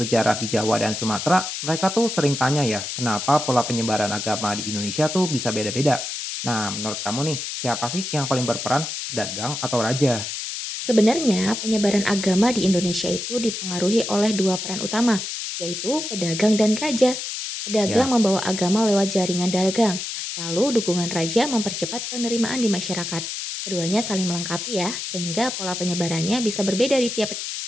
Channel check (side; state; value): left; noise; hiss, 5 dB below the sound